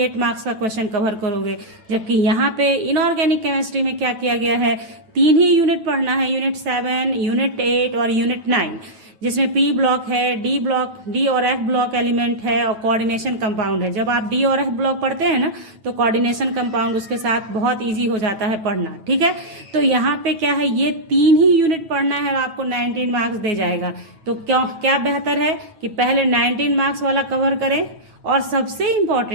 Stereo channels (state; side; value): late; left; 9.2 ms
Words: मार्क्स का क्वेश्चन कवर करोगे। जबकि यहाँ पे इनऑर्गेनिक केमिस्ट्री में क्या किया गया है, 3 ही यूनिट पढ़ना है, यूनिट 7, यूनिट 8 और यूनिट 9, जिसमें पी ब्लॉक है, डी और एफ ब्लॉक एलिमेंट है, और कोऑर्डिनेशन कंपाउंड है। जब आप डी और एफ ब्लॉक पढ़ते हैं ना, तो कोऑर्डिनेशन कंपाउंड उसके साथ बहुत इजी हो जाता है पढ़ना, ठीक है। तो यहाँ पे क्या है, ये 3 ही यूनिट पढ़ना है, आपको 19 मार्क्स दे जाएगा। तो क्या बेहतर है कि पहले 19 मार्क्स वाला कवर करें। और सबसे